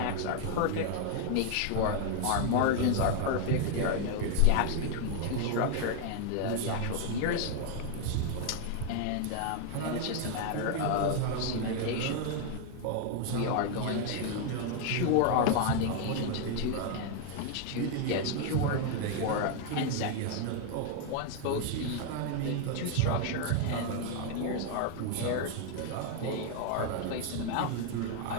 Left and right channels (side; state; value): both; different; correlation 0.00